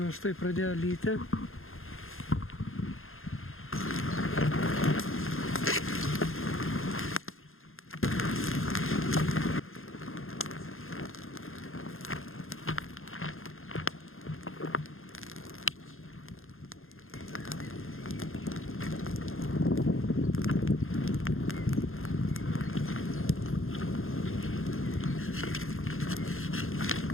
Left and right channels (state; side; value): late; right; 0.60 ms